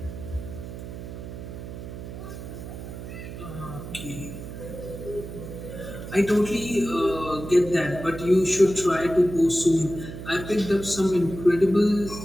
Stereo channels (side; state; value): right; noise; hum, 10 dB below the sound